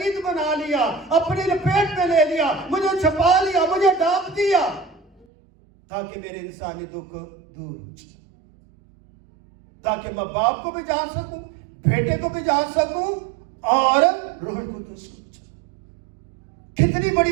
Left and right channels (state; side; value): drops out; left; at 5.2 s